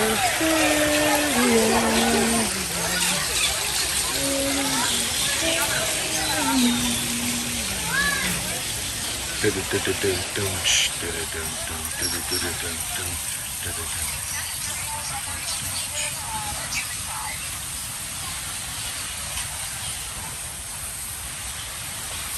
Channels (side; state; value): both; identical; correlation 1.00